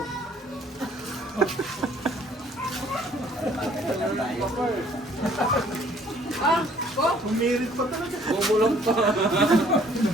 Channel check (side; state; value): both; normal; correlation 0.59